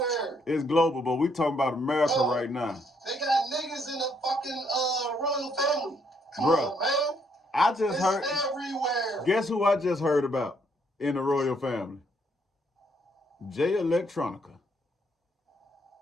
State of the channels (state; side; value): normal; both; correlation 0.71